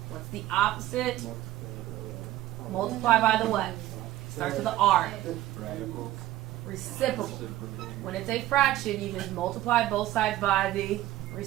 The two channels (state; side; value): quieter; left; 14.8 dB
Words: What's the opposite? Multiply by the what? Starts with the r. Reciprocal. When it's a fraction, you just multiply both sides by the